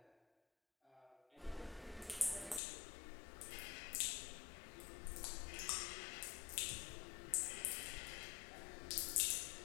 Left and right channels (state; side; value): drops out; right; at 2.6 s